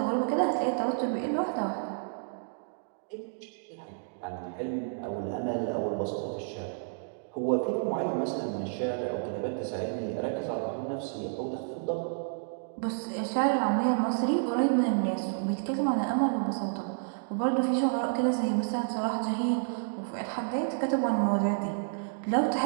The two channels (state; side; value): silent; left; digital silence